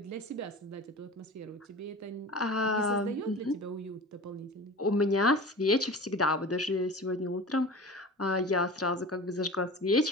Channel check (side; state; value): both; normal; correlation 0.35